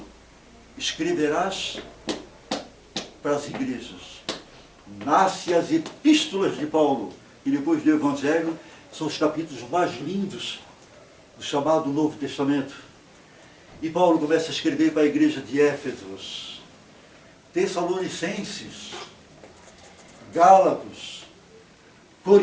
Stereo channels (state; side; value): identical; both; correlation 1.00